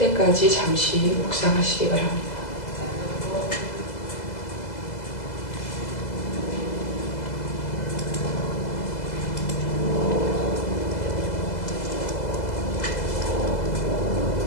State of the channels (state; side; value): late; right; 2.0 ms